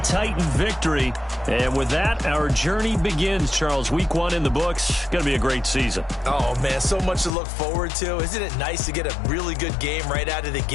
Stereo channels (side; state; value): right; drops out; at 7.3 s